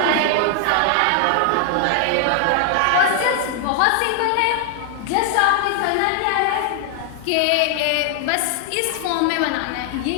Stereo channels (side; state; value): both; different; correlation 0.00